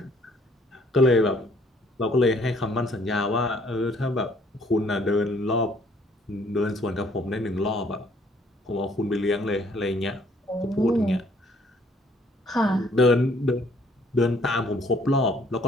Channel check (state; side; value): normal; both; correlation 0.62